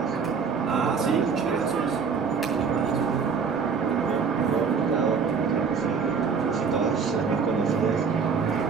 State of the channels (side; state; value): left; quieter; 5.8 dB